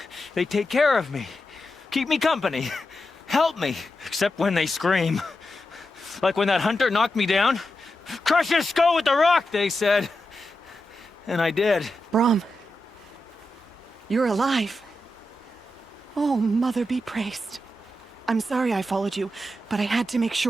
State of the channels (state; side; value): normal; both; correlation 0.89